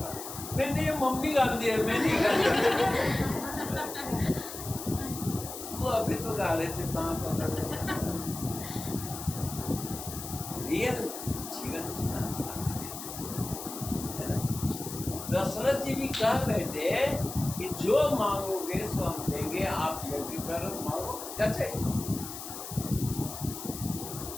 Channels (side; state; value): left; noise; hiss, 9 dB below the sound